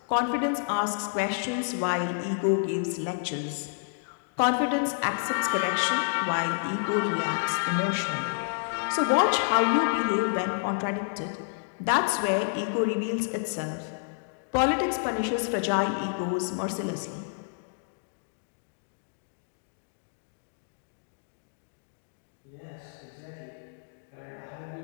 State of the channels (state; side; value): silent; right; digital silence